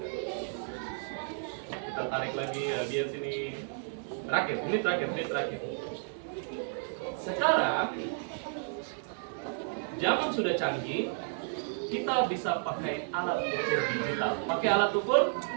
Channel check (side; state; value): left; silent; digital silence